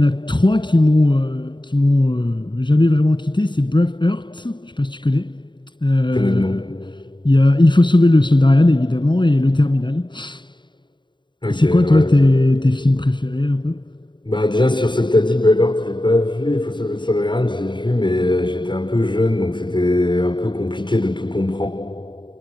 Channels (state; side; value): late; right; 0.23 ms